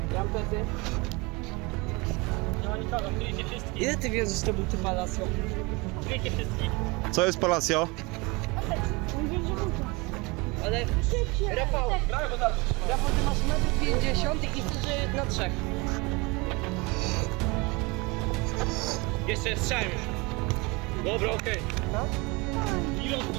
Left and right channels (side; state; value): left; quieter; 26.2 dB